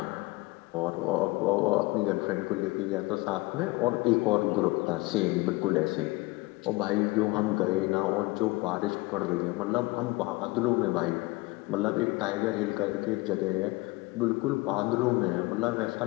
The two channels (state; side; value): quieter; right; 22.9 dB